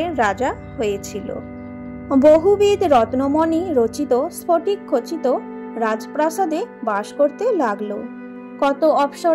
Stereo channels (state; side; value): identical; both; correlation 1.00